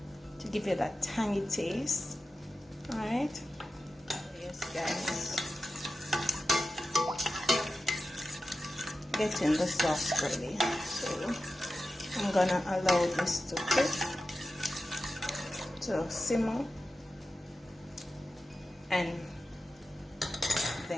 to give it that tangy taste. Alright, yes guys, getting the sauce ready. So I'm gonna allow this to cook, to simmer, and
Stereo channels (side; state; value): both; normal; correlation 0.93